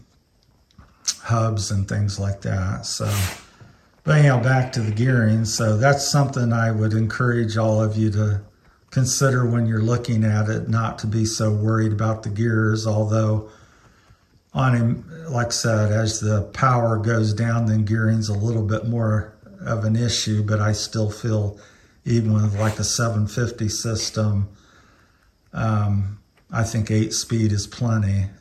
hubs and things like that. So, but anyhow, back to the gearing. So that's something I would encourage all of you to consider when you're looking at it, not to be so worried about the gears. Although on him, like I said, as the power goes down, then gearing's a little bit more of an issue, but I still feel even with like a 750 system, I think 8-speed is plenty,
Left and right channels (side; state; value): both; identical; correlation 1.00